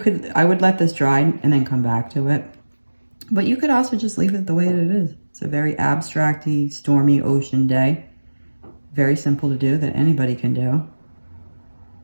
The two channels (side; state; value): both; inverted; correlation -1.00